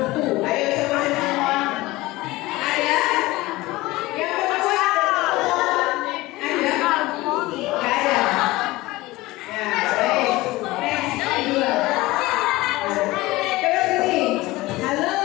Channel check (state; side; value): quieter; right; 19.6 dB